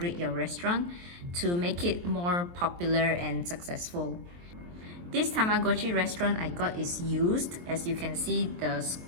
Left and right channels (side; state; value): left; late; 23 ms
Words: your restaurant to make it more popular and successful. This Tamagotchi Restaurant I got is used. As you can see, the